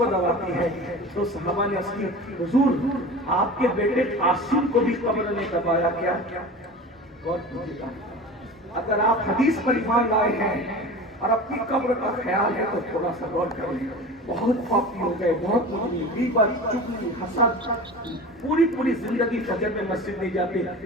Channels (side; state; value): both; normal; correlation 0.34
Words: دباتی ہے. تو صحابہ نے عرض کی حضور آپ کے بیٹے قاسم کو بھی قبر نے دبایا کیا؟ غور کیجیے، اگر آپ حدیث پر ایمان لائے ہیں اور اپنی قبر کا خیال ہے تو تھوڑا سا غور کریں. بہت پاپی ہو گئے، بہت مجرم، غیبت، چغلی، حسد، پوری زندگی فجر میں مسجد نہیں جاتے.